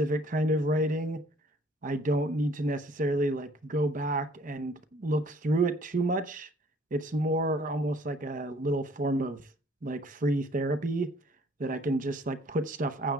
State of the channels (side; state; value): both; normal; correlation 0.58